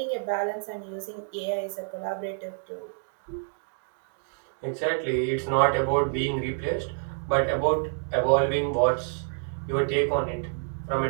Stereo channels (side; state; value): left; silent; digital silence